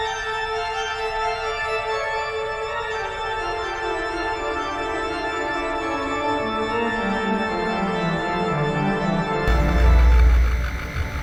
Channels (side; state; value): both; identical; correlation 1.00